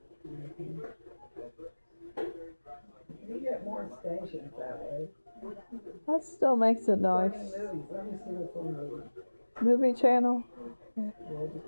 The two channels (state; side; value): inverted; both; correlation -1.00